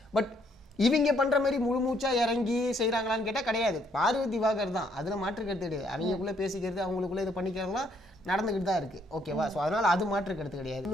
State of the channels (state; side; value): normal; both; correlation 0.69